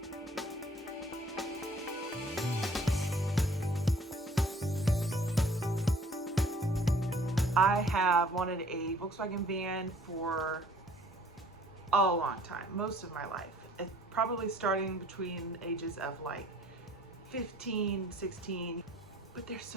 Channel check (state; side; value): normal; both; correlation 0.56